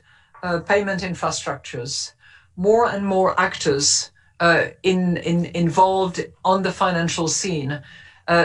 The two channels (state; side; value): identical; both; correlation 1.00